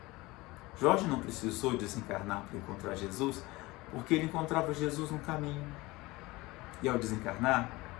Jorge não precisou desencarnar para encontrar Jesus, porque ele encontrava Jesus no caminho. E ao desencarnar,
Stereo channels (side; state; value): right; quieter; 21.3 dB